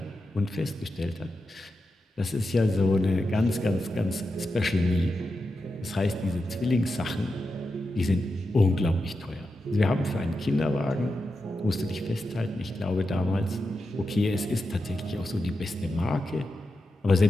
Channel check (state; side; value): normal; both; correlation 0.89